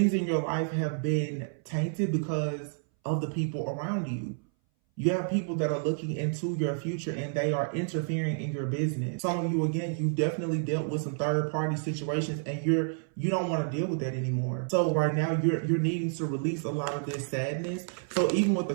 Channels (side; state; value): left; silent; 58 dB below the other